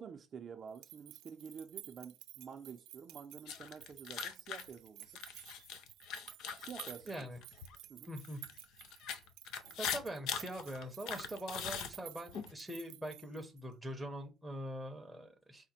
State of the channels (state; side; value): normal; both; correlation 0.59